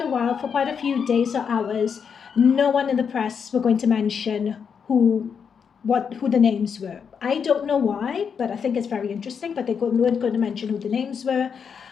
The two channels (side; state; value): right; quieter; 6.7 dB